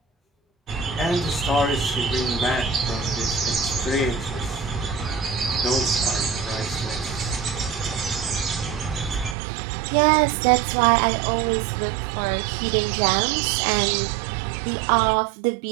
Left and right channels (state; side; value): drops out; left; at 9.3 s